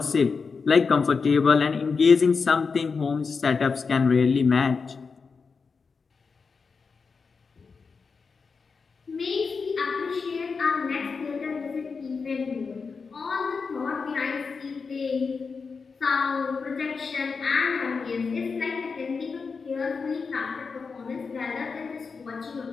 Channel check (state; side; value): quieter; right; 5.0 dB